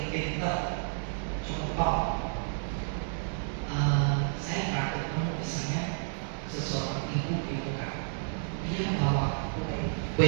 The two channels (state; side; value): silent; left; digital silence